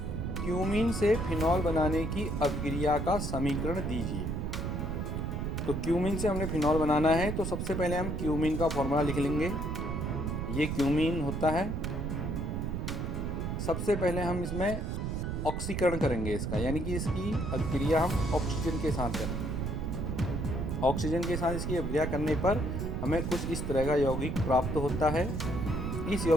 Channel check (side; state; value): right; noise; rumble, 2 dB below the sound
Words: क्यूमीन से फिनॉल बनाने की अभिक्रिया का समीकरण दीजिए। तो क्यूमीन से हमने फिनॉल बनाना है, तो सबसे पहले हम क्यूमीन का फॉर्मूला लिख लेंगे। ये क्यूमीन होता है। सबसे पहले हम इसमें ऑक्सीकरण करेंगे इसका, यानी कि इसकी अभिक्रिया हम ऑक्सीजन के साथ करेंगे। ऑक्सीजन के साथ इसकी अभिक्रिया करने पर हमें कुछ इस तरह का यौगिक प्राप्त होता है। इस